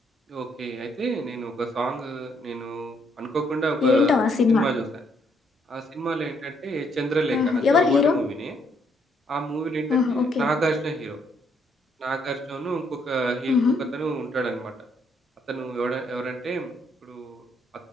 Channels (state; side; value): normal; both; correlation 0.71